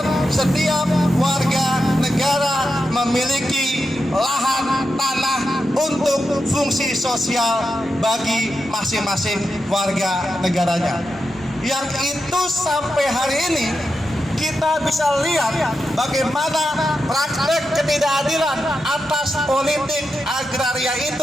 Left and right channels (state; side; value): normal; both; correlation 0.88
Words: setiap warga negara memiliki lahan tanah untuk fungsi sosial bagi masing-masing warga negaranya. Yang itu sampai hari ini kita bisa lihat bagaimana praktek ketidakadilan atas politik agraria